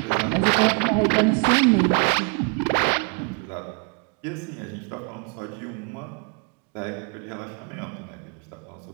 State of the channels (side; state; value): left; quieter; 34.9 dB